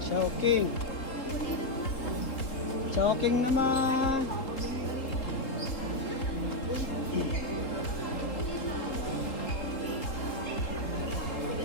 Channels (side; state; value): right; late; 3.8 ms